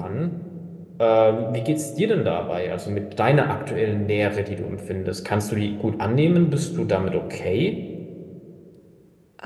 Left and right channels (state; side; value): identical; both; correlation 1.00